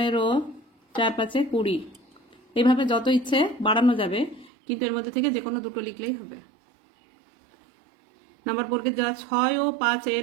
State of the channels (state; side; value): drops out; left; at 4.5 s